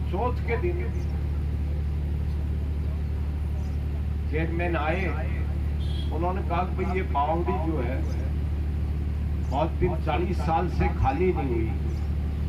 चौथ के दिन चेयरमैन आए, उन्होंने कहा कि भाई ये बावड़ी जो है बहुत दिन 40 साल से खाली नहीं हुई,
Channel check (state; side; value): identical; both; correlation 1.00